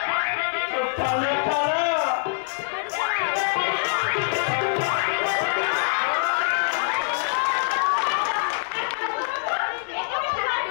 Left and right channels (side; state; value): right; silent; digital silence